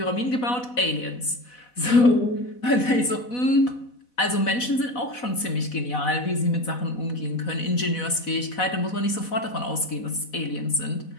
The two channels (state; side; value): late; right; 4.1 ms